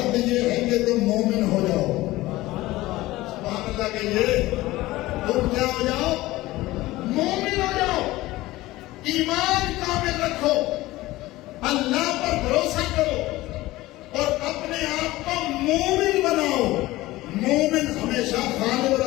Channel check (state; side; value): quieter; right; 18.1 dB